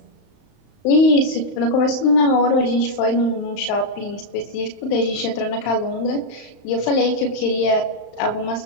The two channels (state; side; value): late; right; 35 ms